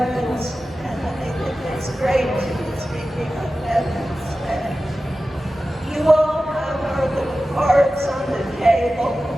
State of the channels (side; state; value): both; normal; correlation 0.94